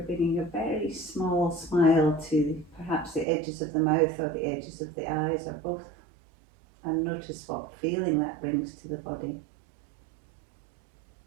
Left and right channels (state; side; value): drops out; left; at 3.2 s